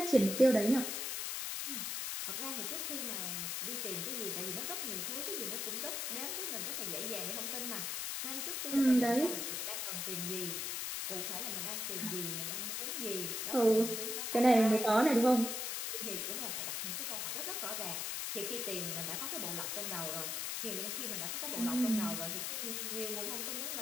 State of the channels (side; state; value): left; noise; hiss, 2 dB below the sound